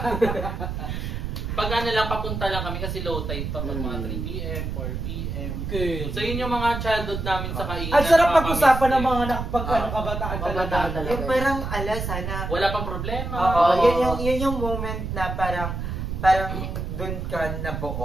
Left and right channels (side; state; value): right; noise; rumble, 4 dB below the sound